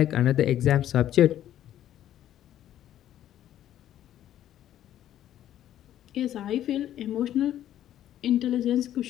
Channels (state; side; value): quieter; right; 11.8 dB